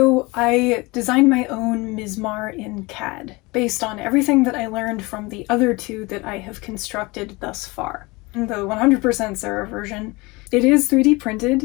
I designed my own Mizmar in CAD, based on everything that I learned from the other two that I have constructed thus far. The 100% Sarah version, it is 3D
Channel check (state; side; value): quieter; right; 24.2 dB